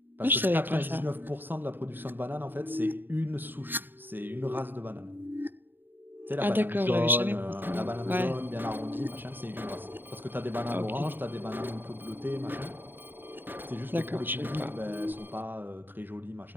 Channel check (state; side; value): late; left; 0.094 ms